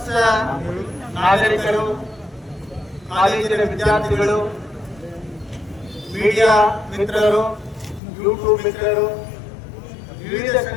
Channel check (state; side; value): drops out; right; at 8.0 s